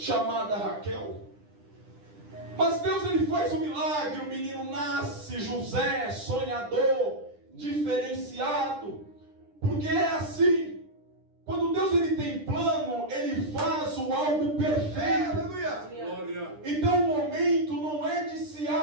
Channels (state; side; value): late; left; 9.9 ms